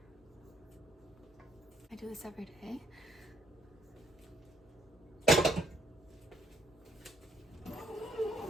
I do this every day.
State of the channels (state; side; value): normal; both; correlation 0.69